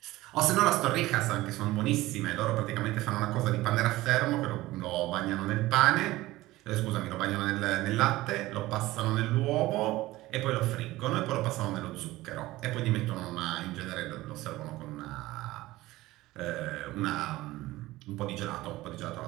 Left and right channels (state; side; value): quieter; left; 17.9 dB